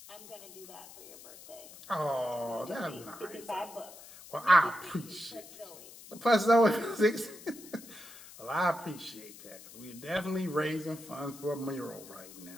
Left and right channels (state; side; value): noise; left; hiss, 17 dB below the sound